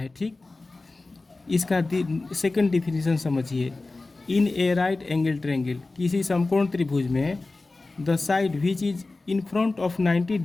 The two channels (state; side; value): quieter; right; 3.3 dB